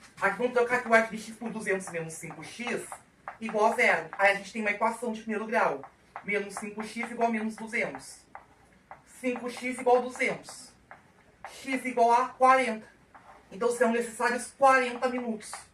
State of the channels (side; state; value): both; identical; correlation 1.00